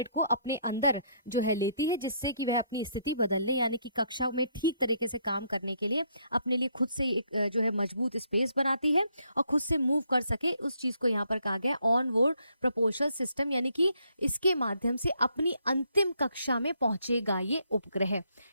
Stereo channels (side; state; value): both; inverted; correlation -0.71